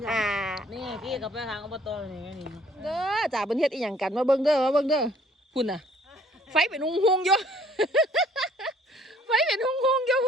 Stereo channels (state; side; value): normal; both; correlation 0.59